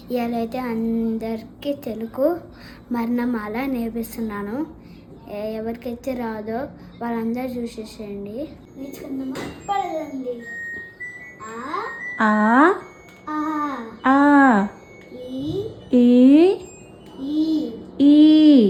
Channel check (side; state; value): both; identical; correlation 1.00